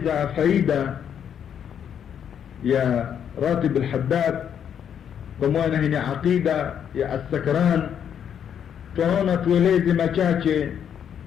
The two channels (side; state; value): right; quieter; 8.6 dB